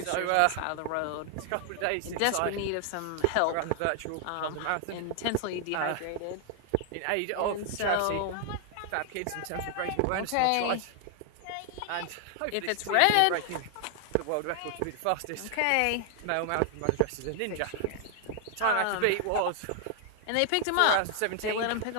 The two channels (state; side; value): different; both; correlation 0.00